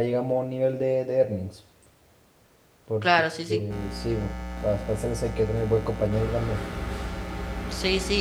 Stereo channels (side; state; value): both; identical; correlation 1.00